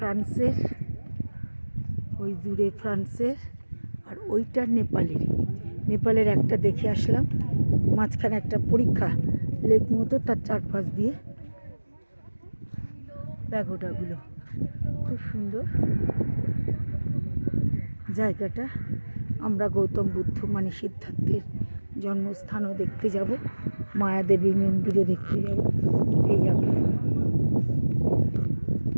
ওই দূরে ফ্রান্সের, আর ওইটা নেপালের একটা দেখে আসলাম। মাঝখানে একটা পরীক্ষা লেক মতো, তার চারপাশ দিয়ে প্যাগোডাগুলো খুব সুন্দর জায়গাটা। আমরা গৌতম বুদ্ধ মানে সিদ্ধার্থের জন্মস্থানও দেখতে যাব, মায়াদেবী মন্দিরও দেখতে যাব। এই যাবে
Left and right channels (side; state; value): both; inverted; correlation -1.00